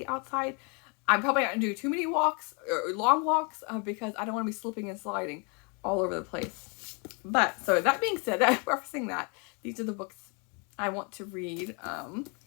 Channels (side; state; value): right; quieter; 34.6 dB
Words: outside, I'm probably not going to do too many walks, or long walks, because I don't want to be slipping and sliding all over the place. But, so that being said, referencing that, these are the books I want to read.